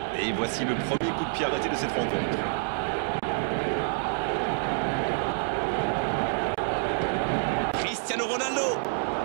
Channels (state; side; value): silent; left; digital silence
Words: Et voici le premier coup de pied arrêté de cette rencontre. Cristiano Ronaldo.